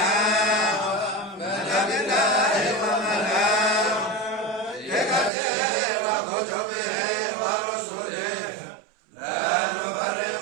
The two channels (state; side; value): drops out; left; at 5.3 s